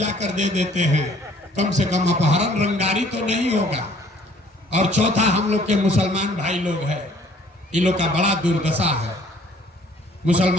दे देते हैं, कम से कम अपहरण रंगारी तो नहीं होगा। और चौथा, हम लोग के मुसलमान भाई लोग हैं, इन लोग का बड़ा दुर्दशा है।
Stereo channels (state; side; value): normal; both; correlation 0.58